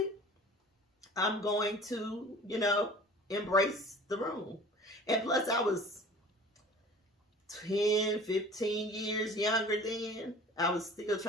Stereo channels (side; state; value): both; normal; correlation 0.44